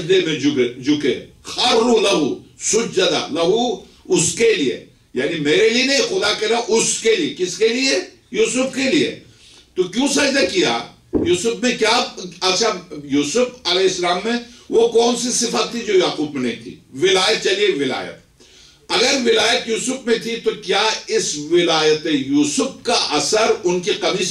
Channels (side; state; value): both; identical; correlation 1.00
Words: میں جھکے، خَرُّ لَهُ سُجَّدًا، لہو اس کے لیے، یعنی میرے لیے نہیں، خدا کے لیے، اس کے لیے، کس کے لیے؟ یوسف کے لیے۔ تو کیوں سجدہ کیا؟ یوسف میں کیا؟ اچھا یوسف علیہ السلام میں وہ کون سی صفت تھی جو یعقوب میں نہیں تھی؟ ولایت، چلیے ولایت، اگر ولایت یوسف میں تھی تو کیا اس ولایت یوسف کا اثر ان کی